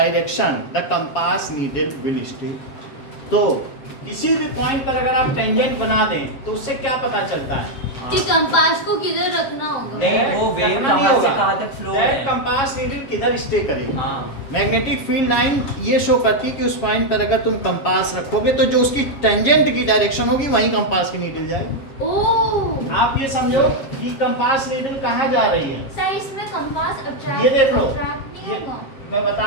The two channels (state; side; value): late; right; 7.2 ms